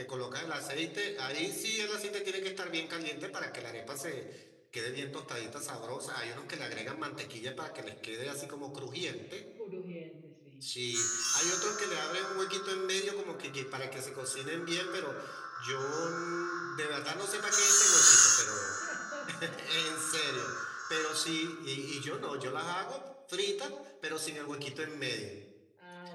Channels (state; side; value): identical; both; correlation 1.00